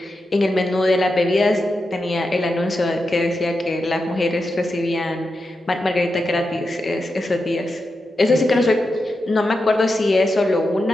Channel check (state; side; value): normal; both; correlation 0.89